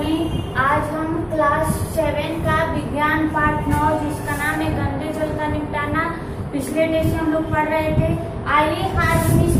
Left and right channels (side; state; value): both; identical; correlation 1.00